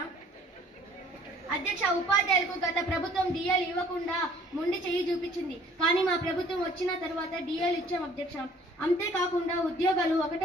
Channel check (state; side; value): normal; both; correlation 0.56